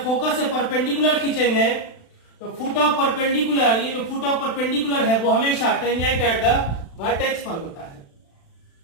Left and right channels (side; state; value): right; late; 36 ms